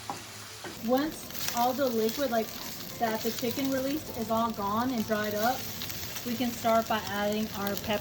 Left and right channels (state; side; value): identical; both; correlation 1.00